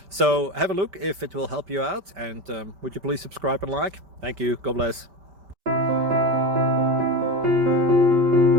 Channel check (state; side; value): late; left; 5.1 ms